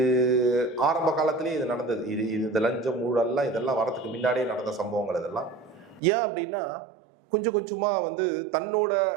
ஆரம்ப காலத்திலேயே இது நடந்தது. இந்த லஞ்சம் ஊழல்லாம் இதெல்லாம் வரதுக்கு முன்னாடியே நடந்த சம்பவங்கள் இதெல்லாம். ஏன் அப்படின்னா, கொஞ்சம் கொஞ்சமாக வந்து தன்னோட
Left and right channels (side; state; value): left; drops out; at 6.0 s